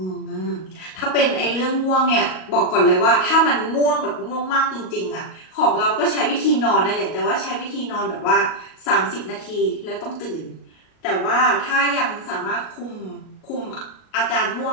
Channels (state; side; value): late; right; 38 ms